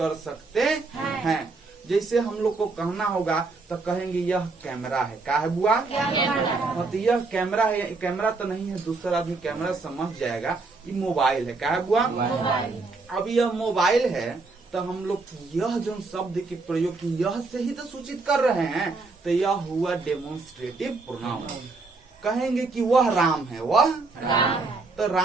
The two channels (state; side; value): quieter; left; 3.8 dB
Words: सकते हैं। जैसे हम लोग को कहना होगा तो कहेंगे यह कैमरा है। क्या है बुआ? तो यह कैमरा है। कैमरा तो नहीं है, दूसरा आदमी कैमरा समझ जाएगा। ये मोबाइल है। क्या है बुआ? अब यह मोबाइल है तो हम लोग यह जो शब्द के प्रयोग की यह से ही तो सूचित कर रहे हैं। तो यह हुआ डेमोन्स्ट्रेटिव प्रोनाउन। कहेंगे कि वह राम है, वह तो